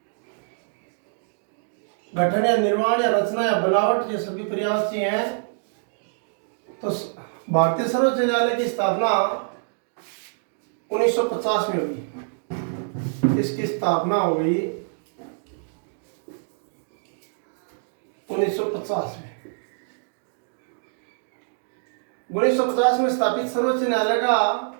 गठन या निर्माण या रचना या बनावट, ये सभी पर्यायवाची हैं। तो भारतीय सर्वोच्च न्यायालय की स्थापना 1950 में हुई। इसकी स्थापना हो गई 1950 में। 1950 में स्थापित सर्वोच्च न्यायालय का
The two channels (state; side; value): silent; left; digital silence